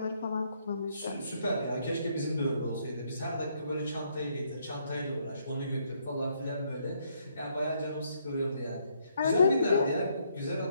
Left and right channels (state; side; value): inverted; both; correlation -0.72